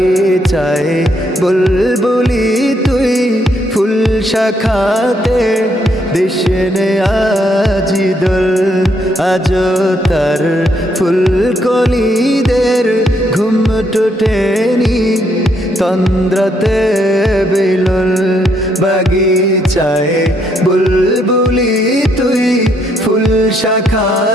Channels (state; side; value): normal; both; correlation 0.73